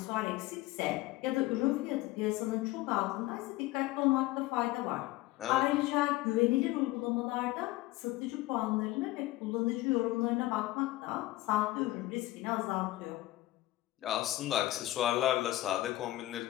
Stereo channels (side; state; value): right; quieter; 17.4 dB